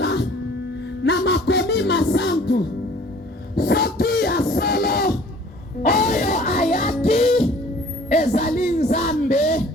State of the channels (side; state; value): both; normal; correlation 0.52